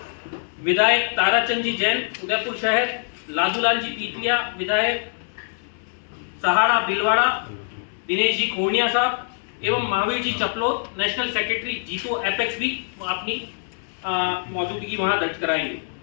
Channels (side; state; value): right; silent; 63 dB below the other